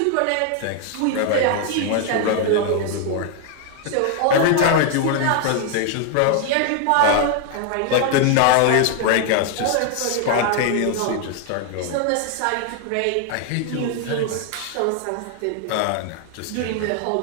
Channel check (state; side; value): different; both; correlation 0.00